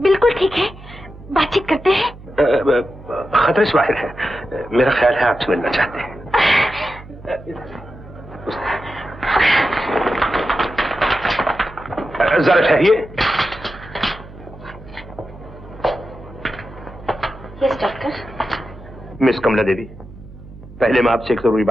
बिल्कुल ठीक है, बातचीत करते हैं। खतरे से बाहर है, मेरा ख्याल है आपसे मिलना चाहते हैं। जरा ठहरिए। Yes doctor. Miss Kamla Devi, पहले मैं आपसे एक जरूरी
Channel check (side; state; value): right; noise; hum, 18 dB below the sound